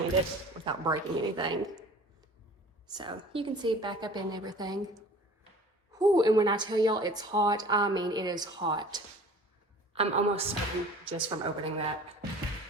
without breaking anything. So you can see back up in everything. Whew, and when I tell y'all it's hot, I mean it is hot. I'm almost sweating just from opening that.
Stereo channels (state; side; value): normal; both; correlation 0.46